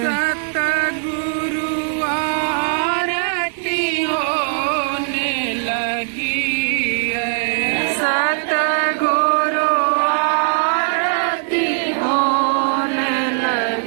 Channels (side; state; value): left; silent; 63 dB below the other